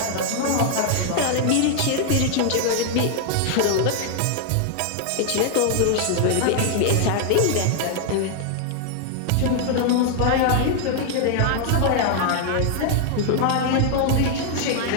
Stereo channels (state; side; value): different; both; correlation 0.00